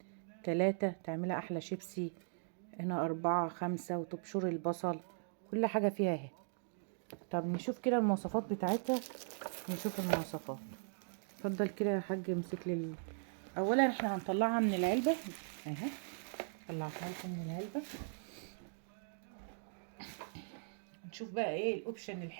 3 تعملها احلى شيبسي. هنا 4 5 وتبشر البصل، كل حاجة فيها اهي. طب نشوف كده المواصفات بتاعتها، نشوف المواصفات. اتفضل كده يا حاج، امسك لي اولا احنا هنطلعها من العلبة اهي. طلعتها لكم من العلبة. نشوف بقى ايه الاوبشن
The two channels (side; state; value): left; silent; digital silence